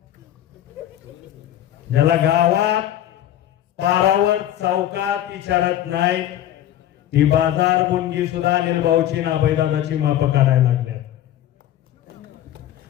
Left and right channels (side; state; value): right; quieter; 12.2 dB